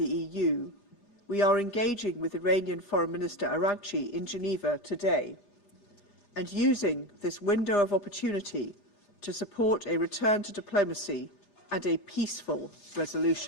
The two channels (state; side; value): late; right; 8.3 ms